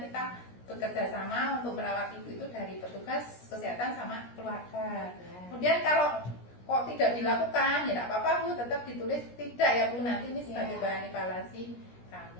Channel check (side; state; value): right; late; 17 ms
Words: kita bekerja sama untuk merawat Ibu itu dari petugas kesehatan sama keluarga. Kemudian kalau kok tidak dilakukan, ya tidak apa-apa Bu, tetap ditulis tidak ya Bu, nanti ini sebagai bahan evaluasi